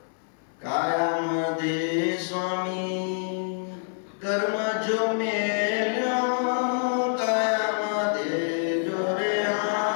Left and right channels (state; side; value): silent; right; digital silence